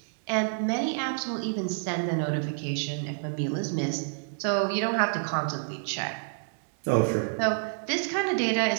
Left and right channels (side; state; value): left; silent; digital silence